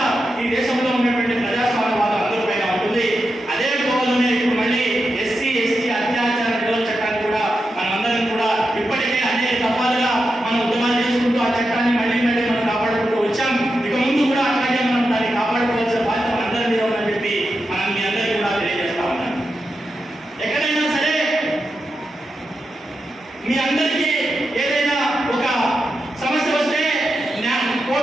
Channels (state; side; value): normal; both; correlation 0.88